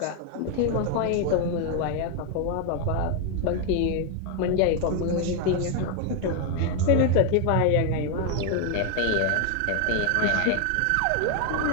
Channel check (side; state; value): both; different; correlation 0.01